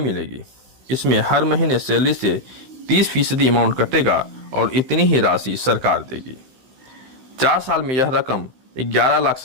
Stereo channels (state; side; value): late; left; 15 ms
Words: इसमें हर महीने सैलरी से 30% अमाउंट कटेगा और इतनी ही राशि सरकार देगी। 4 साल में यह रकम